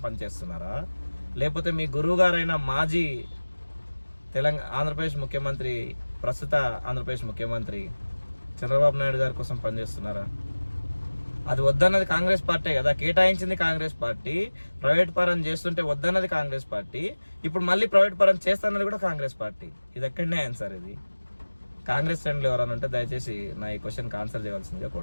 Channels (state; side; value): inverted; both; correlation -1.00